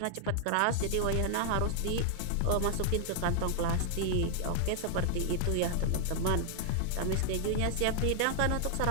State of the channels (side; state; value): both; different; correlation 0.00